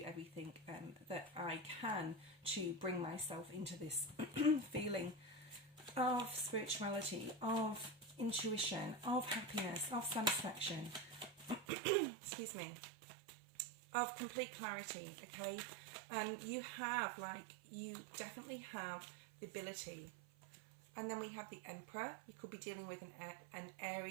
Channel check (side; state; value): left; drops out; at 11.7 s